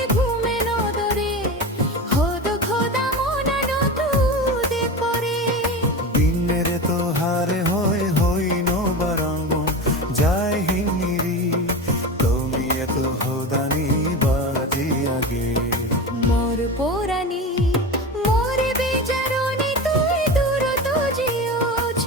ঘুমে নদরে হোদ খোদা মনানো তুদে পরে দিনের তো হারে হয় হইন বারাম যায় হিমিরি তুমি এত হোদানি বাজি আগে মোর পোরানি মোর বেজারণে তুই দূরত জিওছ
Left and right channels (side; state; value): both; normal; correlation 0.26